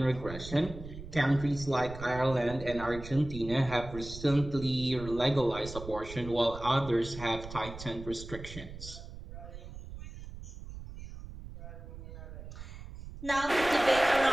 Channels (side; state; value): right; noise; rumble, 12 dB below the sound